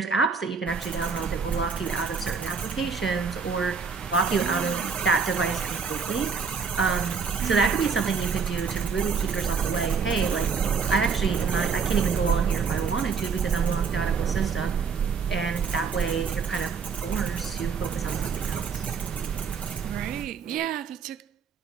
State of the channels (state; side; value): quieter; left; 5.6 dB